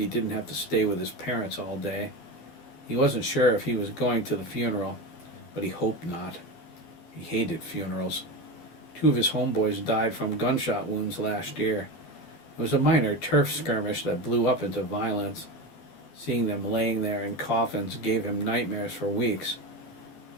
didn't have to stay with his parents all day. He wasn't sure if he was going to the funeral, but he hoped not. He hated funerals. 2 of his homeboys died from gunshot wounds last year. It was a minor turf skirmish that blew up into violence. Seeing them laying there in coffins gave him nightmares for weeks.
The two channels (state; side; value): late; right; 12 ms